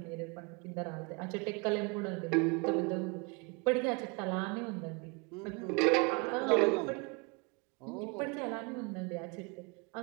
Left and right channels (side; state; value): left; quieter; 30.3 dB